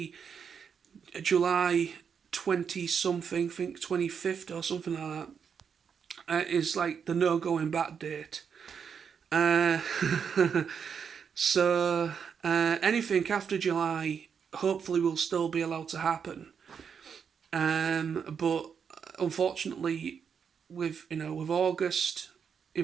July 20 something, I think 25th or something like that, is like the no going back date. So anything after July hopefully will still be allowed to happen. But unfortunately, with August,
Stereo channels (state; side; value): quieter; left; 6.9 dB